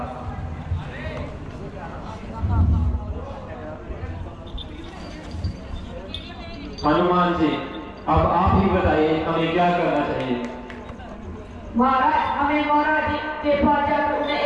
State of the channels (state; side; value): identical; both; correlation 1.00